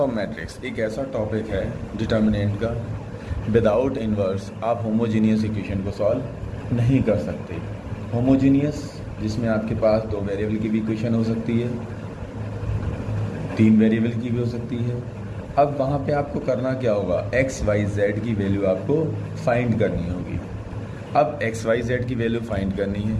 matrix एक ऐसा टॉपिक है डिटर्मिनेंट का। विदाउट इन्वर्स आप होमोजीनियस इक्वेशन को सॉल्व नहीं कर सकते। होमोजीनियस जिसमें आपके पास 2 वेरिएबल की भी इक्वेशन हो सकती है, 3 वेरिएबल की भी हो सकती है। अब वहाँ पे आपको करना क्या होगा, एक्स वाई जेड की वैल्यू आपको फाइंड करनी होगी। अब एक्स वाई जेड की वैल्यू फाइंड करनी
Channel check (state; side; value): identical; both; correlation 1.00